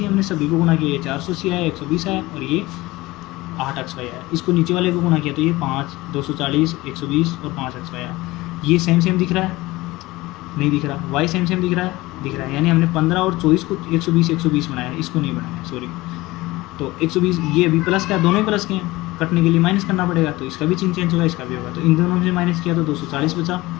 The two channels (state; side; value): quieter; right; 19.8 dB